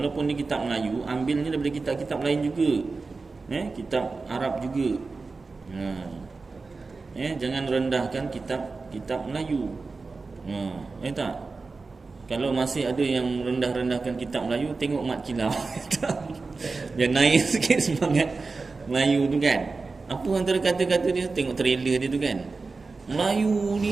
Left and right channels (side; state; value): left; quieter; 4.0 dB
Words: dia kitab Melayu, ambilnya daripada kitab-kitab lain juga. Kitab Arab juga. Jangan rendahkan kitab Melayu. Tak? Kalau masih ada yang rendah-rendahkan kitab Melayu, tengok Mat Kilau. Dia naik sikit semangat Melayu tu kan. Apa antara kata-kata dia? Tengok trailer dia tu kan. Melayu